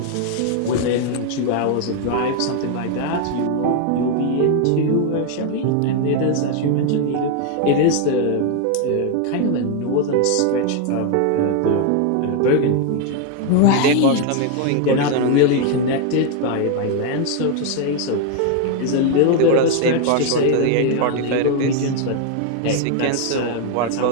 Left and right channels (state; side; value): different; both; correlation 0.01